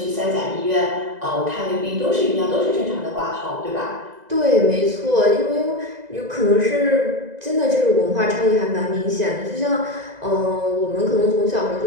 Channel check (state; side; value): late; left; 2.0 ms